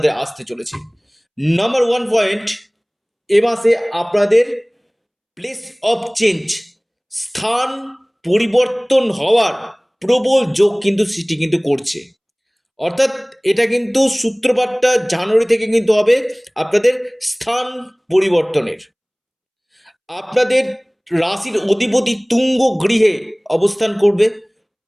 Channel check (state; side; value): identical; both; correlation 1.00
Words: আসতে চলেছে। নাম্বার ওয়ান পয়েন্ট, এ মাসে আপনাদের প্লেস অফ চেঞ্জ, স্থান পরিবর্তন হওয়ার প্রবল যোগ কিন্তু সৃষ্টি কিন্তু করছে। অর্থাৎ এটা কিন্তু সূত্রপাতটা জানুয়ারি থেকে কিন্তু হবে আপনাদের স্থান পরিবর্তনের। আপনাদের রাশির অধিপতি তুঙ্গ গৃহে অবস্থান করবে।